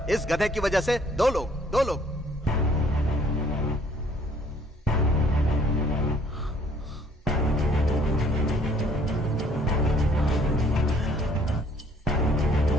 इस गधे की वजह से दो लोग।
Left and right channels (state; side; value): normal; both; correlation 0.61